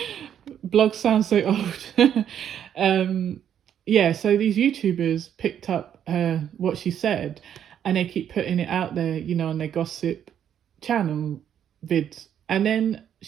Blogs sound so old. Yeah, so these YouTubers picked up what she said, and they keep putting it out there, on their gossip channel vids. And then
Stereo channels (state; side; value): quieter; left; 9.4 dB